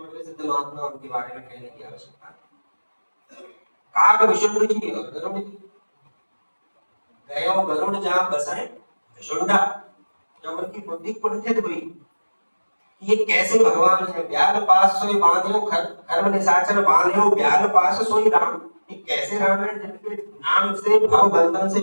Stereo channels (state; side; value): inverted; both; correlation -1.00